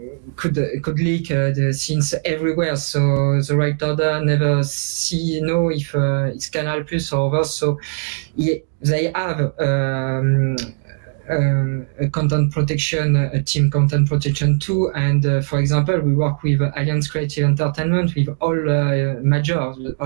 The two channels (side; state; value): left; silent; digital silence